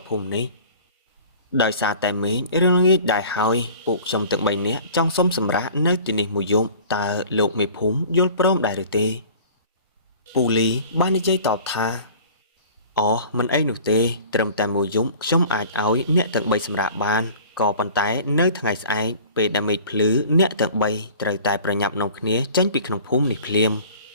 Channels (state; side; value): inverted; both; correlation -0.45